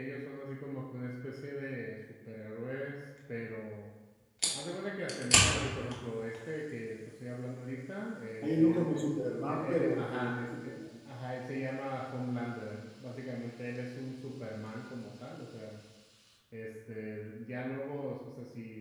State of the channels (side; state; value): both; identical; correlation 1.00